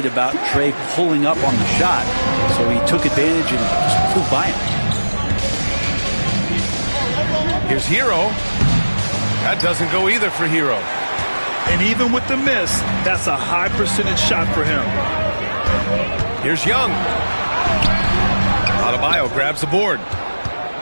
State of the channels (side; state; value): both; inverted; correlation -1.00